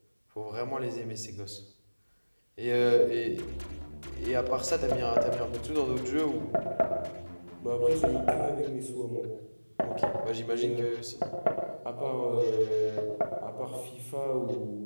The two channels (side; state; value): both; inverted; correlation -1.00